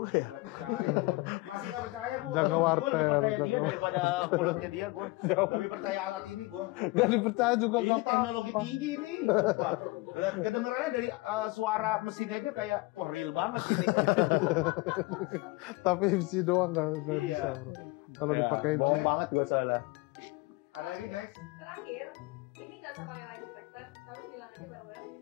ya. Gak percaya gue. Masih gak percaya gue. Jaga Gue wartel, lebih percaya jaga dia daripada mulutnya dia. Gue lebih percaya alat ini gue. Gak dipercaya juga. Ini teknologi tinggi nih. Sumpah. Kedengerannya dari suara mesinnya aja kayak wah real banget ini. Tapi MC doang gak Iya. bisa bro. Kalau dipakai Oke. banget gue soalnya. Ada lagi next? Terakhir, ini nggak usah pakai line detector, tapi bilang aja bareng-bareng ini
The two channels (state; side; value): quieter; right; 22.9 dB